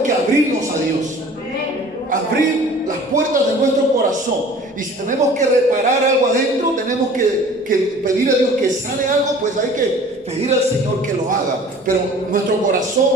que abrirnos a Dios. Abrir las puertas de nuestro corazón. Y si tenemos que reparar algo adentro, tenemos que pedir a Dios que sane algo, pues hay que pedir al Señor que lo haga. Pero nuestro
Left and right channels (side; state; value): both; normal; correlation 0.47